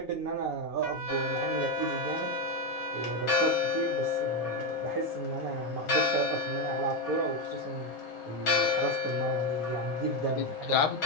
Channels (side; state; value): both; normal; correlation 0.08